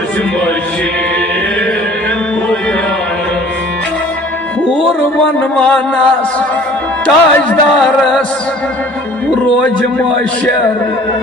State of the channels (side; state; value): both; normal; correlation 0.50